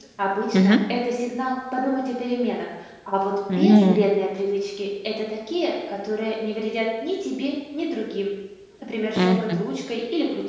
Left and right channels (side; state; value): both; identical; correlation 1.00